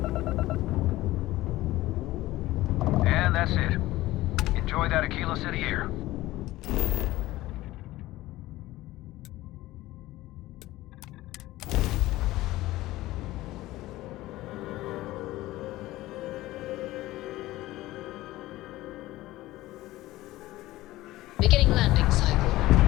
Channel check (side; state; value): right; quieter; 17.2 dB